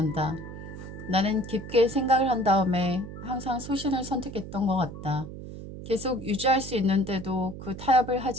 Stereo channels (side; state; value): right; noise; hum, 11 dB below the sound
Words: 나는 깊게 생각을 한 다음에 항상 소신을 선택했던 것 같다. 계속 유지할 수 있는데도 그 타협을